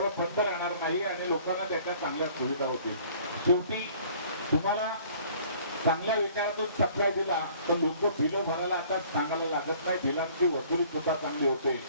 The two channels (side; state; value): both; inverted; correlation -0.54